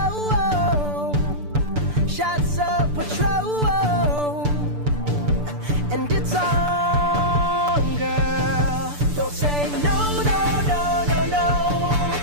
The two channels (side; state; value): left; late; 6.8 ms